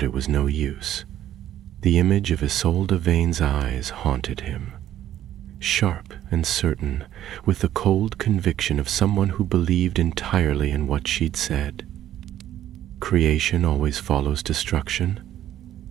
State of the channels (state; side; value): quieter; left; 12.0 dB